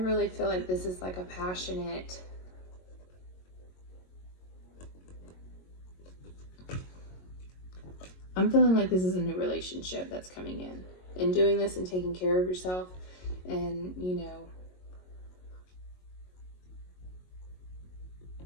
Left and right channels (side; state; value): right; late; 22 ms